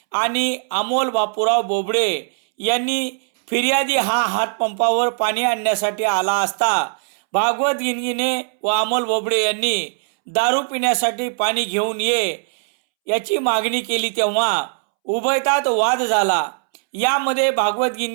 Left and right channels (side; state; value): left; silent; 66 dB below the other